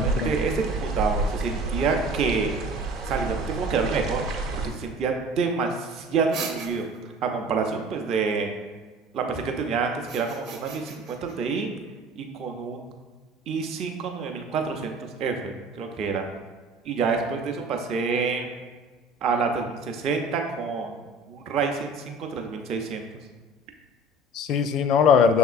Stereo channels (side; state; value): both; normal; correlation 0.44